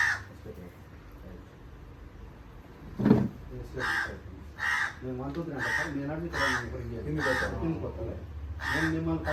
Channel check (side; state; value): both; identical; correlation 1.00